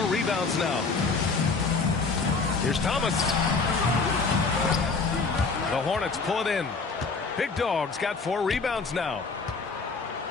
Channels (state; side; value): quieter; right; 4.4 dB